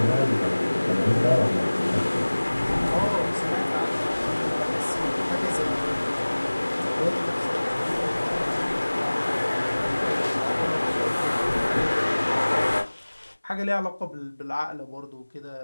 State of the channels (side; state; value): both; inverted; correlation -1.00